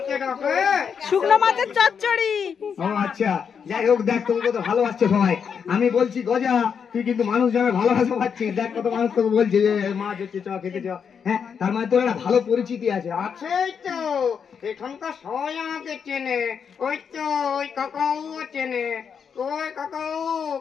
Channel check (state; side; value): quieter; right; 6.9 dB